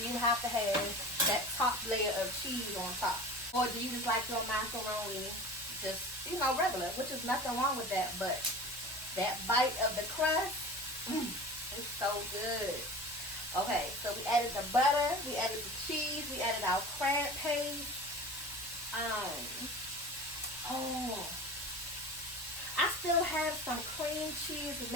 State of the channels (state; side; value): normal; both; correlation 0.36